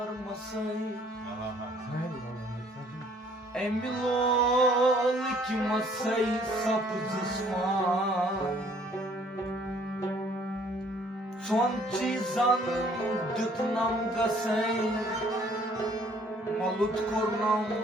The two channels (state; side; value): normal; both; correlation 0.60